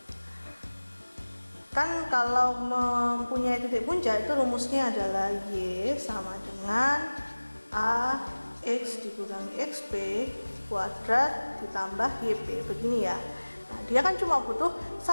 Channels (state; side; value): inverted; both; correlation -1.00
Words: Kan kalau mempunyai titik puncak itu rumusnya adalah Y sama dengan A X dikurangi XP kuadrat ditambah YP. Begini ya. Nah, dia kan cuma butuh